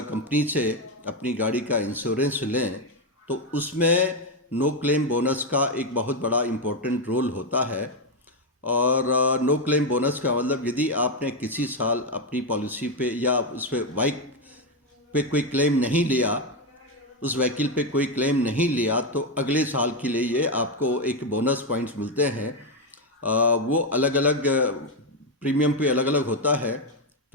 से अपनी गाड़ी का इंश्योरेंस लें तो उसमें नो क्लेम बोनस का एक बहुत बड़ा इम्पोर्टेंट रोल होता है। और नो क्लेम बोनस का मतलब यदि आपने किसी साल अपनी पॉलिसी पे या उस पे बाइक पे कोई क्लेम नहीं लिया, उस व्हीकल पे कोई क्लेम नहीं लिया, तो अगले साल के लिए ये आपको एक बोनस पॉइंट्स मिलते हैं। वो अलग अलग प्रीमियम पे अलग अलग होता है।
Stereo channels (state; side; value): normal; both; correlation 0.06